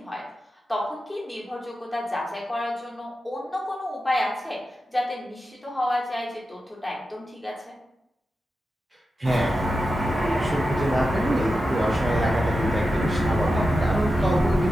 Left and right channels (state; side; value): normal; both; correlation 0.90